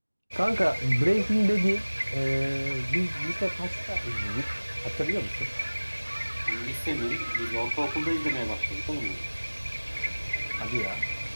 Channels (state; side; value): inverted; both; correlation -1.00